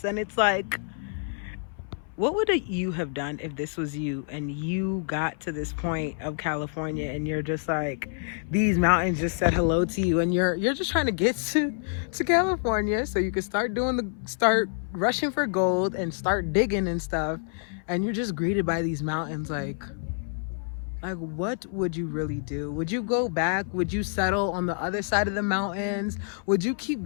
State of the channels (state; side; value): silent; right; 60 dB below the other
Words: And it's like, what would you have done if this was you and you got to this point of California and you're just like, these mountains just said hello to you, and you're just trying to get to California so you can start rushing for gold and start digging and stuff, and you're just greeted by these mountains. Like, what would you really do? Would you go back? Would you settle on the other side of the mountains? Would you keep